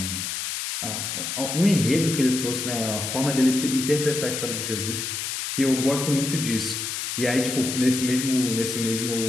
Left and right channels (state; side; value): noise; left; hiss, 4 dB below the sound